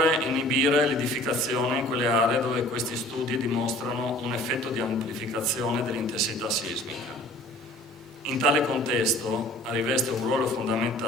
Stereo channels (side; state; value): both; normal; correlation 0.49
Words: inibire l'edificazione in quelle aree dove questi studi dimostrano un effetto di amplificazione dell'intensità sismica. In tale contesto riveste un ruolo